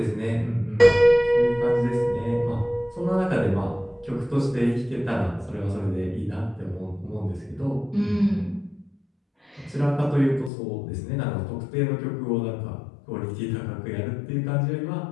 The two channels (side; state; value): right; drops out; at 10.5 s